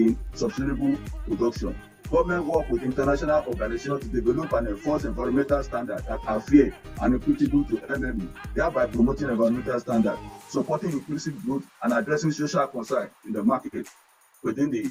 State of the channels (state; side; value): identical; both; correlation 1.00